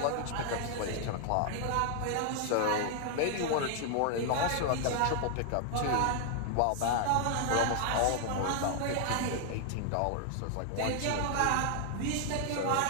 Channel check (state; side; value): different; both; correlation 0.00